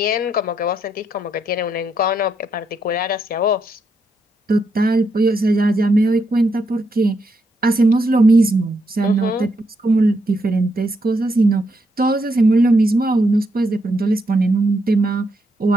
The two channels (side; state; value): both; normal; correlation 0.79